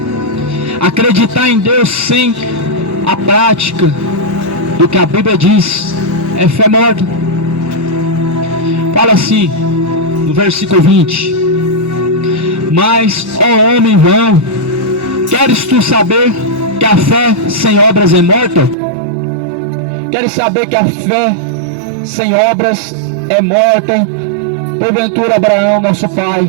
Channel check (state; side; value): drops out; left; at 18.8 s